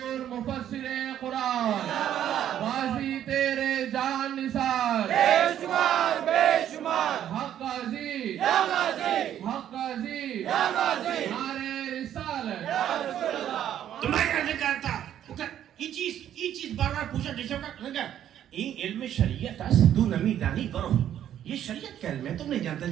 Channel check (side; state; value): left; quieter; 10.7 dB